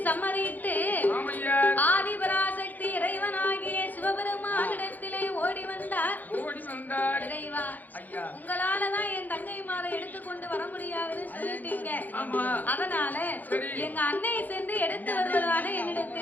சம்மதித்து ஆதிபராசக்தி இறைவனாகிய சிவபெருமானிடத்திலே ஓடி வந்தார். இறைவா, உங்களாலதான் என் தங்கைமாரை எடுத்துக்கொண்டு வர முடியாதுன்னு சொல்லிட்டீங்க. அதனால எங்க அன்னை சென்று எடுத்து வருவதாக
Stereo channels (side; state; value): right; late; 0.083 ms